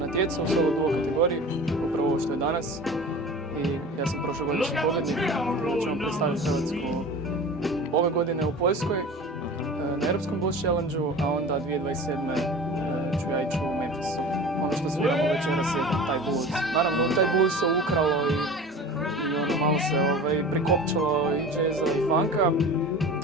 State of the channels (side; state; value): both; normal; correlation 0.37